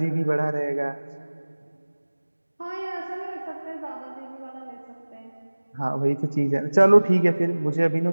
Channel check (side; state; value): both; inverted; correlation -1.00